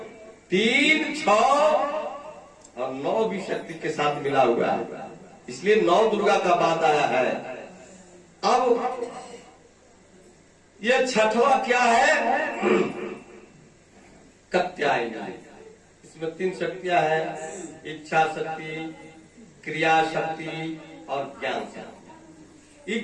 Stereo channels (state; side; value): identical; both; correlation 1.00